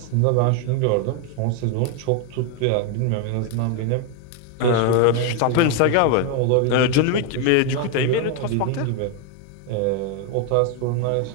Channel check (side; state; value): both; different; correlation 0.01